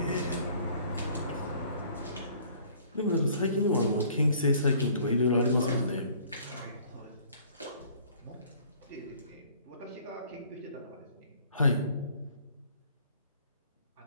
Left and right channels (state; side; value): inverted; both; correlation -0.55